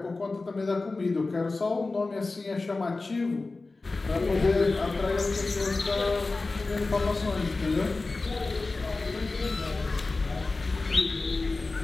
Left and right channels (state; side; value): quieter; right; 3.5 dB